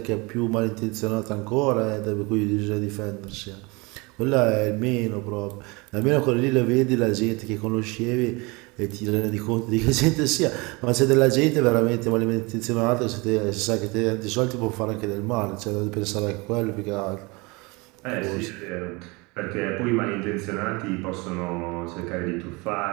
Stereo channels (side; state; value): left; quieter; 26.3 dB